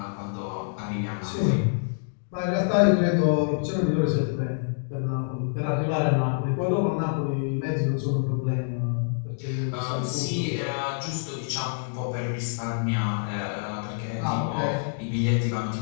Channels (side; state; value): right; silent; digital silence